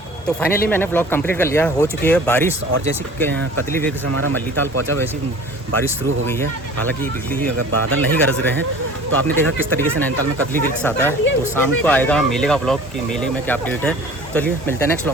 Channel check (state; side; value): normal; both; correlation 0.45